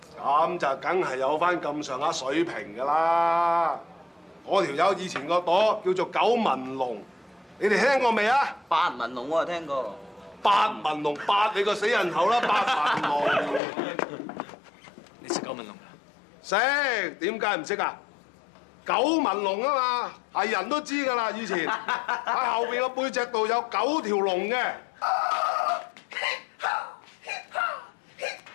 咁就梗係有翻咁上下水平㗎啦。嗰條友以前個朵叫做九紋龍，你哋聽過未啊？八紋龍我就聽過。八紋龍，八你個死人頭啦！八紋龍，你識九紋龍㗎？識，點解唔識啊？九紋龍啊嘛，係人都知㗎啦。以前喺後邊個背脊度有9條龍嘅。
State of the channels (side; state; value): right; drops out; at 13.6 s